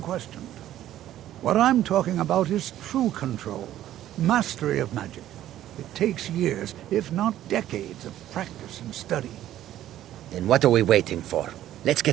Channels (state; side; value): quieter; left; 12.7 dB